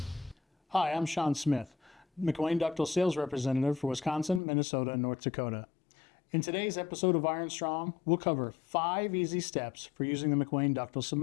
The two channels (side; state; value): right; drops out; at 4.4 s